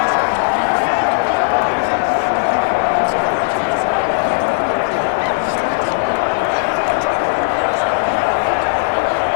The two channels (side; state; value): right; silent; digital silence